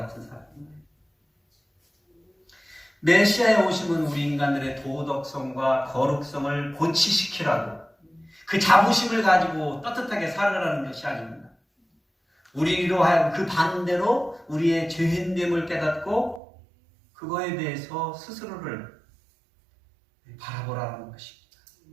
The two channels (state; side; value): drops out; left; at 16.4 s